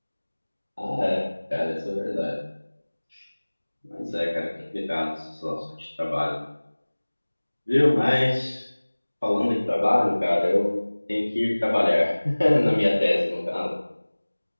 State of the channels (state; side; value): inverted; both; correlation -1.00